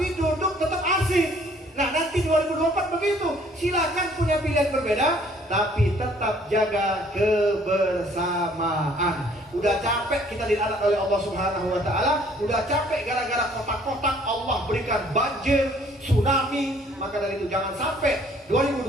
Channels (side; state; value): both; normal; correlation 0.59